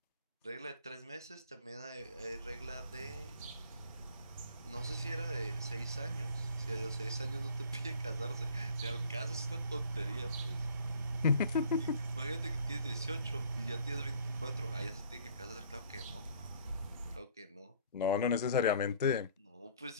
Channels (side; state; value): both; inverted; correlation -0.54